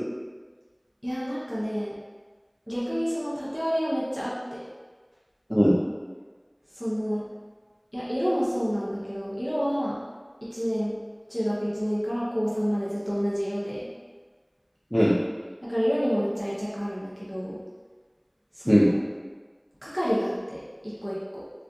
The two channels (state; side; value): identical; both; correlation 1.00